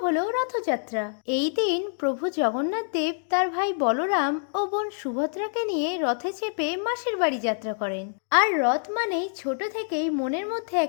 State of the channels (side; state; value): right; silent; digital silence